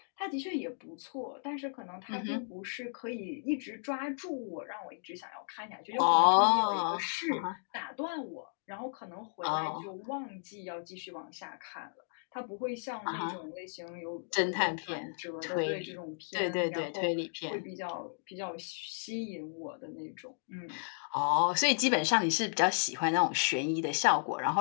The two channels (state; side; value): silent; right; digital silence